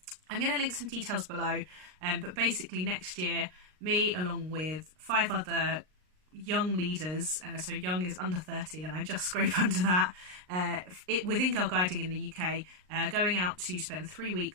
I'm going to link some details below, but basically next year me along with 5 other young leaders, so young is under 30 and I just scrape under that, within Girl Guiding in the UK, going out to spend 3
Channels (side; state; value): left; late; 39 ms